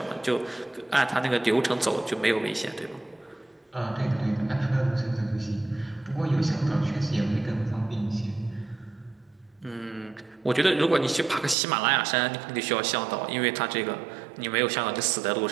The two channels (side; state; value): left; drops out; at 11.6 s